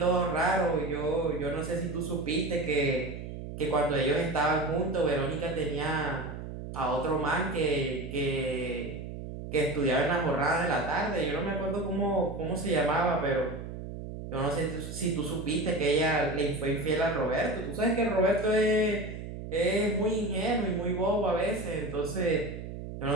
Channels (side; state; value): right; noise; hum, 9 dB below the sound